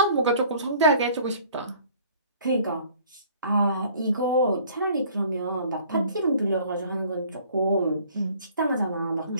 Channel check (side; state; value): both; inverted; correlation -0.54